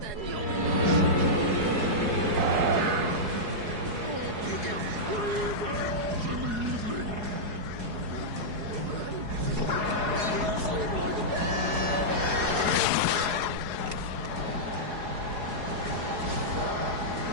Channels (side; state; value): left; late; 4.8 ms